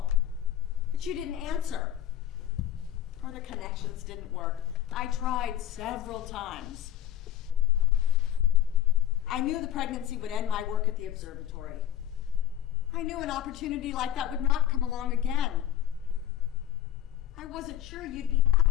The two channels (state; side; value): quieter; right; 11.3 dB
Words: but you didn't answer. Or the connections didn't work. I tried several times. I knew the pregnancy would end my work at the observatory. I knew an opportunity like that would not come along again. I wasn't sure you'd be